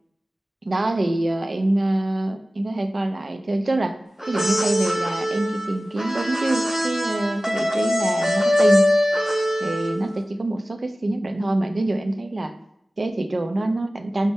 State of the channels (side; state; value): both; normal; correlation 0.97